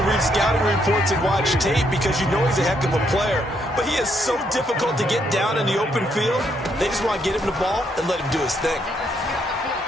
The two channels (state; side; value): normal; both; correlation 0.74